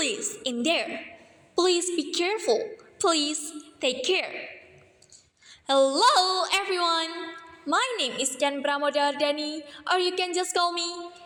in there. Please be careful. Please take care. Hello everyone. My name is Ken Pramodhawardani, or you can just call me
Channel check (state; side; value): identical; both; correlation 1.00